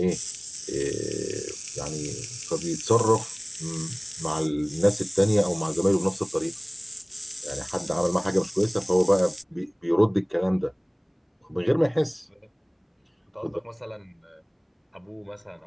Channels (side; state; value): both; identical; correlation 1.00